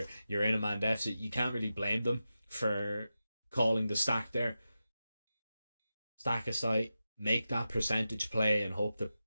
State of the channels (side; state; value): both; inverted; correlation -0.91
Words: in a man deficit, you can't really blame them for calling the stack there. Stack aside, make that percentage play and hope the